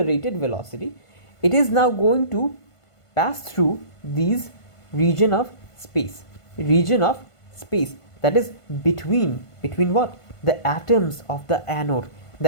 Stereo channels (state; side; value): late; right; 1.5 ms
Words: velocity, it is now going to pass through these region of space that is between what? The atoms of the anode,